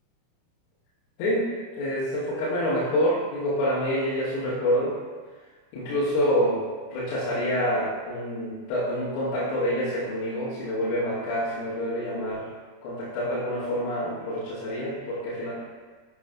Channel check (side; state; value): right; late; 30 ms